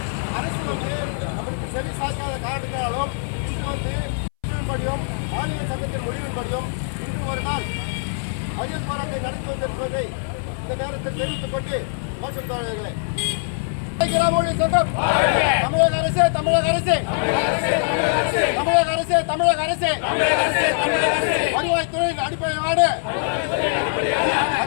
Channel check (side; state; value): right; silent; 63 dB below the other